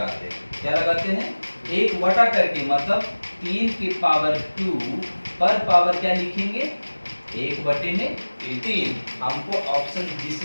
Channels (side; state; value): both; inverted; correlation -1.00